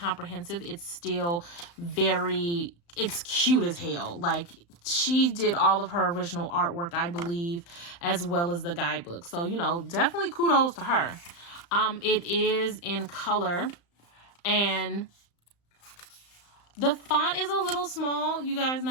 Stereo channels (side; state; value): right; late; 35 ms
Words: It's still it's cute as hell. Like, she did all of her original artwork, I believe, as well as the guidebook. So, you know, definitely kudos to her. It is in color, and the font is a little small. You guys